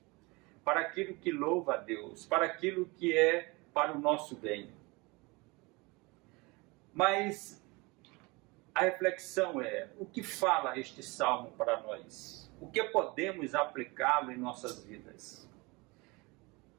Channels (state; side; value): quieter; left; 25.5 dB